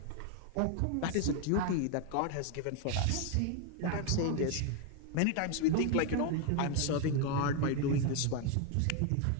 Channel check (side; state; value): both; different; correlation 0.01